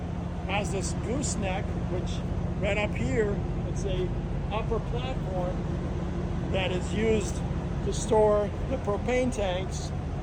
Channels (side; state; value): both; identical; correlation 1.00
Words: has this gooseneck, which right up here, it's a upper platform that is used to store the propane tanks